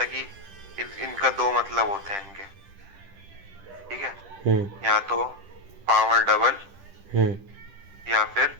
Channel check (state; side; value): late; left; 10 ms